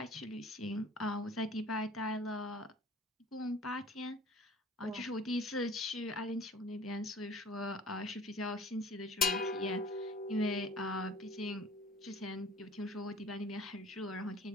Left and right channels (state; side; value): normal; both; correlation 0.48